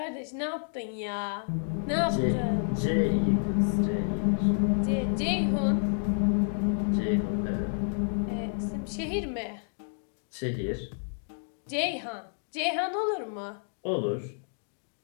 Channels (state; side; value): silent; right; digital silence